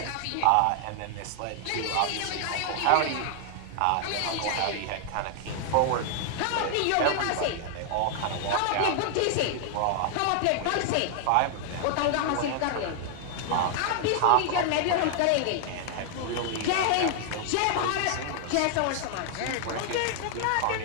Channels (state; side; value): different; both; correlation 0.00